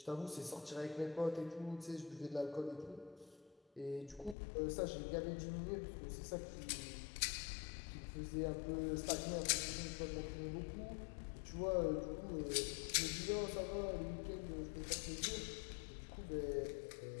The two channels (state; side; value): drops out; right; at 4.4 s